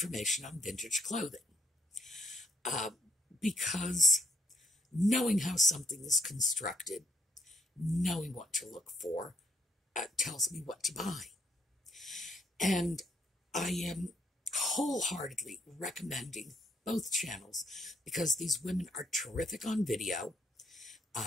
on vintage clothing. Because knowing how something is constructed, knowing what to look for, tells me what to buy. And I am wholeheartedly recommending both channels because these women are terrific on video.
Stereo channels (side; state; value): both; normal; correlation 0.71